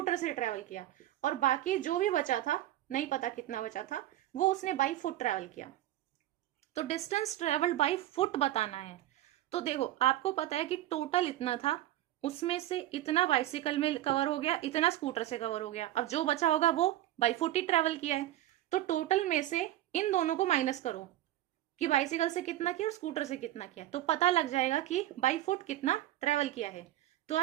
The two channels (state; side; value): quieter; left; 14.1 dB